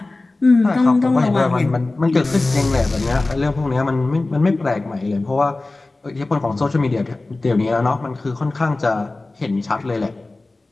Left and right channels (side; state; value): right; quieter; 3.1 dB